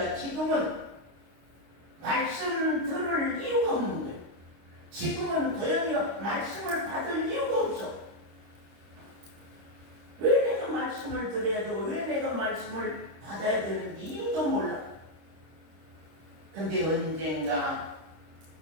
지금은 말씀 들을 이유가 없는 거예요. 지금은 도연이가 말씀을 받을 이유가 없어. 왜 내가 말씀을 들어야 되고 왜 내가 말씀을 받아야 되는지 이유도 몰라. 근데 언젠가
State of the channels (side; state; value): left; late; 25 ms